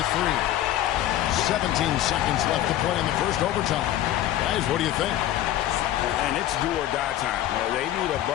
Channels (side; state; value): right; quieter; 12.9 dB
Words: 3. 17 seconds left to play in the first overtime. Guys, what do you think? And it's do or die time. They need a